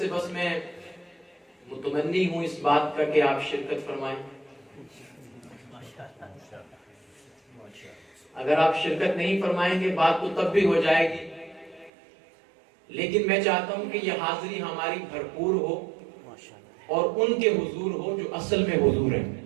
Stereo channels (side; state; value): left; drops out; at 11.9 s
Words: بس میں متمنی ہوں اس بات کا کہ آپ شرکت فرمائیں۔ اگر آپ شرکت نہیں فرمائیں گے بات تو تب بھی ہو جائے گی، لیکن میں چاہتا ہوں کہ یہ حاضری ہماری بھرپور ہو اور ان کے حضور ہو جو اصل میں حضور ہیں،